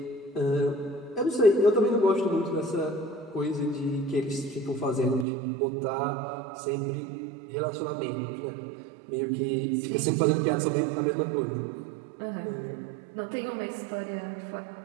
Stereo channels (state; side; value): drops out; left; at 5.2 s